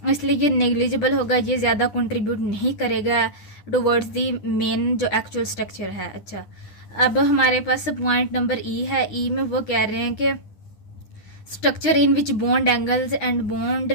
इसलिए ये नेग्लिजिबल होगा, ये ज़्यादा कंट्रीब्यूट नहीं करेगा टुवर्ड्स दी मेन जो एक्चुअल स्ट्रक्चर है। अच्छा, अब हमारे पास पॉइंट नंबर ई है। ई में वो कह रहे हैं कि structure in which bond angles and bond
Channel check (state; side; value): late; right; 10 ms